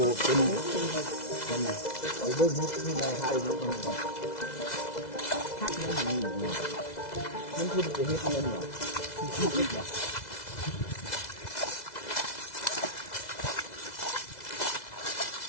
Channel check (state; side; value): late; right; 2.0 ms